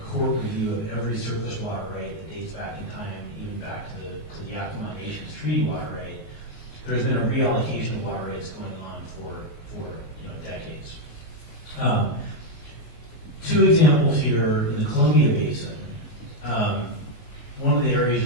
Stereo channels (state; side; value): late; right; 19 ms